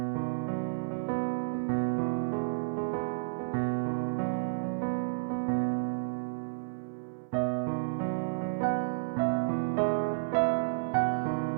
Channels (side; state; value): left; silent; 57 dB below the other